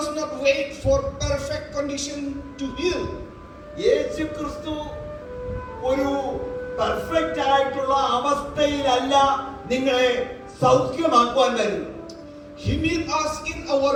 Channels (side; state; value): both; identical; correlation 1.00